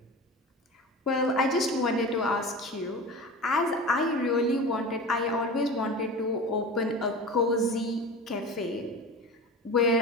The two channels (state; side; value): normal; both; correlation 0.32